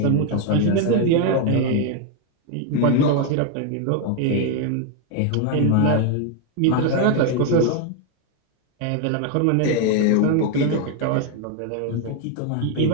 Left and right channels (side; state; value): both; different; correlation 0.01